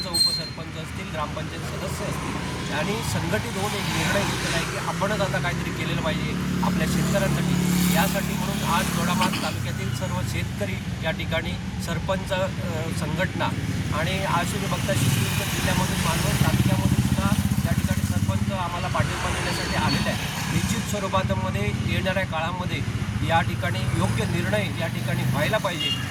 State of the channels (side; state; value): both; identical; correlation 1.00